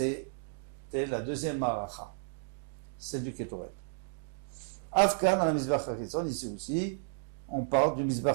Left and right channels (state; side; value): silent; left; digital silence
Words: la deuxième maracha, celle du Ketoret. Afkan, à la Mizbeach HaChitzon, ici aussi, on parle du